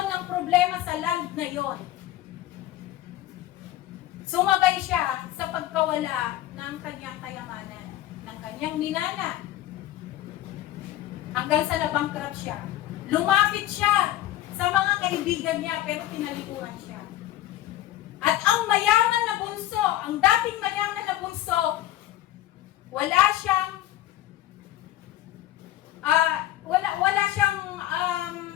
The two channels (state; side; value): quieter; right; 14.0 dB